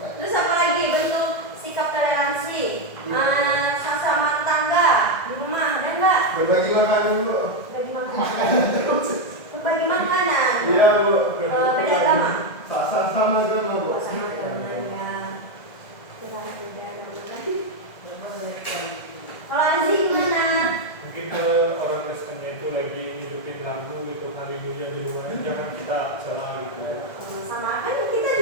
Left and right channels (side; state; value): right; late; 1.5 ms